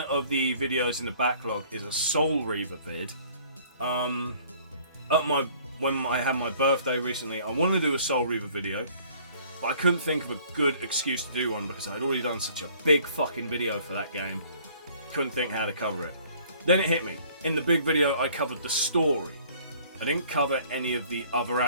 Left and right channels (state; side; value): inverted; both; correlation -0.55